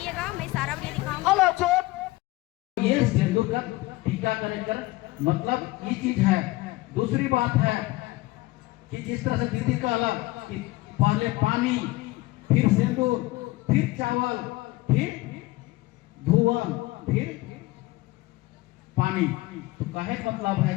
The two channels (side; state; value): right; quieter; 19.7 dB